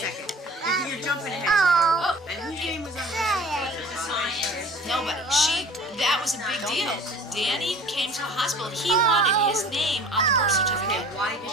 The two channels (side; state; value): both; normal; correlation 0.45